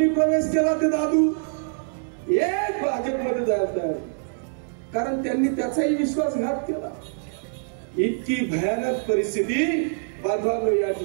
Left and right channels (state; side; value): silent; left; digital silence